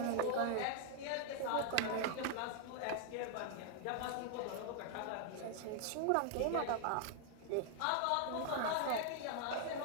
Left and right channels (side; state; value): both; different; correlation 0.00